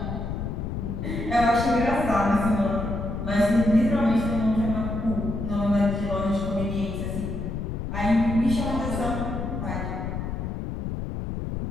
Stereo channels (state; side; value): noise; left; rumble, 4 dB below the sound